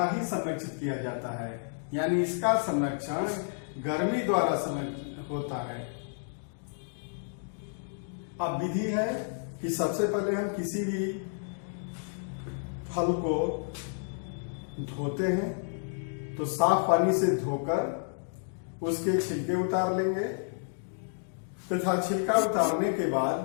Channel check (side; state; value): right; silent; digital silence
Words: ही संरक्षित किया जाता है, यानी इसका संरक्षण गर्मी द्वारा होता है। अब विधि है कि सबसे पहले हम किसी भी फल को धोते हैं तो साफ पानी से धोकर उसके छिलके उतार लेंगे तथा छिलका उतारने के